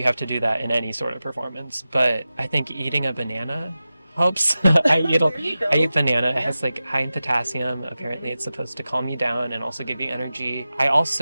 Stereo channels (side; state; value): both; inverted; correlation -0.94